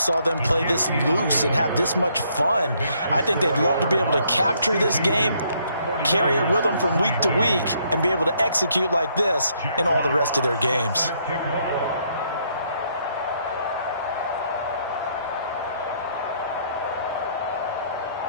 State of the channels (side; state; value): both; inverted; correlation -0.70